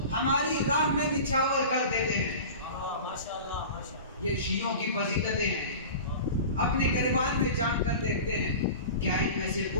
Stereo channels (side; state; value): both; inverted; correlation -0.35